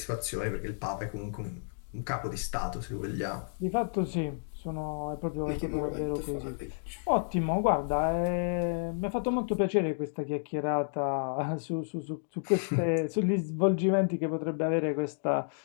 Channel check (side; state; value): right; silent; digital silence